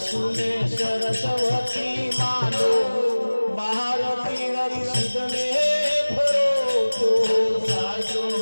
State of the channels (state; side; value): inverted; both; correlation -1.00